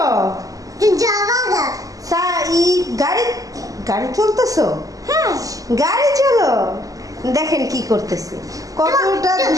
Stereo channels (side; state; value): left; late; 0.17 ms